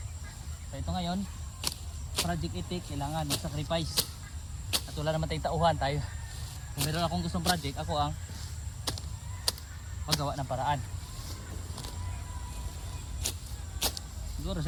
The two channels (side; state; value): both; identical; correlation 1.00